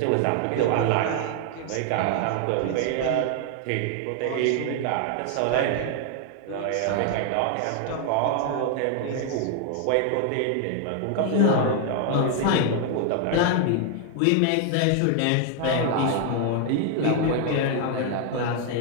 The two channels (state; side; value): different; both; correlation 0.00